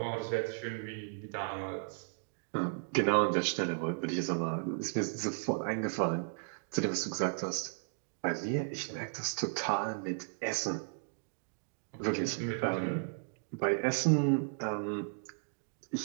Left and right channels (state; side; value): silent; left; digital silence